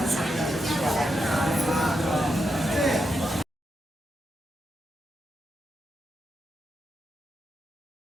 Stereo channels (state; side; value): normal; both; correlation 0.85